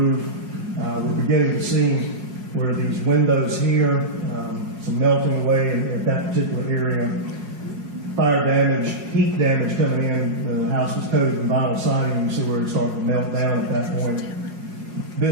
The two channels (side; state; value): left; late; 5.2 ms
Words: We're beginning to see where these windows here, some melting away at that particular area. fire damage, heat damage coming in. The house was coated in vinyl siding. You see where it's starting to melt down at that point.